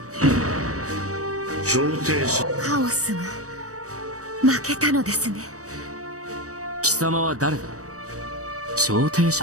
調停者カオスが負けたのですね。貴様は誰だ？調停者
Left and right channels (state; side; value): late; left; 0.66 ms